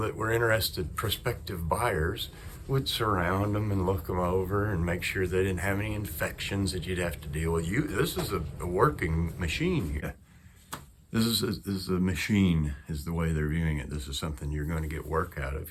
were interested, prospective buyers, would surround them and look them over and make sure they didn't have any infections that you'd have to deal with. This is a working machine here. This is a machine, is the way they're viewing it. This is something you're going to get work out of. If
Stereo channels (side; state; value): both; identical; correlation 1.00